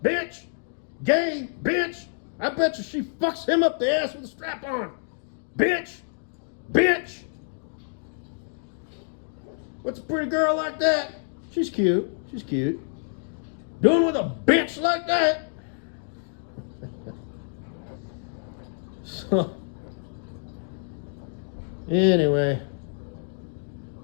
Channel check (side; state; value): right; silent; digital silence